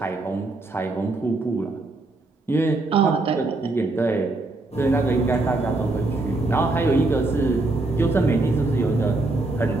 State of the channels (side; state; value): left; quieter; 3.0 dB